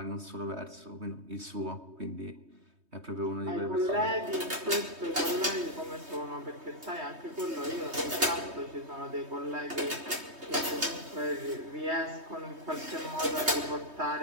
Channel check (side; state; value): left; late; 3.2 ms